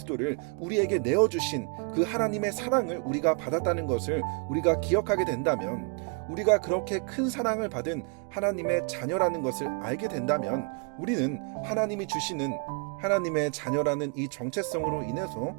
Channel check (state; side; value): quieter; left; 38.4 dB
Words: 우리에게 내어주신 그 하나님의 사랑을 우리가 받았다는 것을 우리가 기억하게 된다면, 우리가 그렇게 큰 사랑을 받은 하나님의 자녀라는 것을 알게 된다면 우리는 하나님이 주시는 하나님의 자녀라는 이 정체성으로 인해서